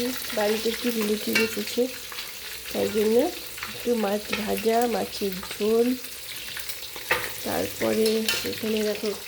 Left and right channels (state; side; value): identical; both; correlation 1.00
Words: বাড়িতে একটু রিলেটিভ এসেছে, তাই জন্য একটু মাছ ভাজা, মাছের ঝোল। তারপরে এখানে দেখো